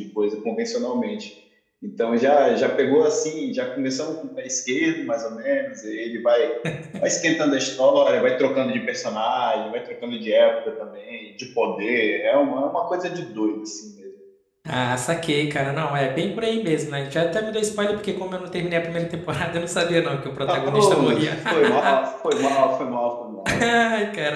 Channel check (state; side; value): identical; both; correlation 1.00